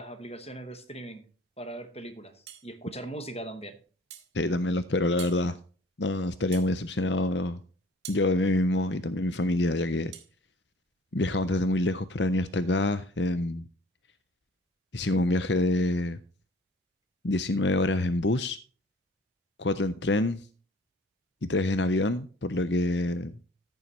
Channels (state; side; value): normal; both; correlation 0.51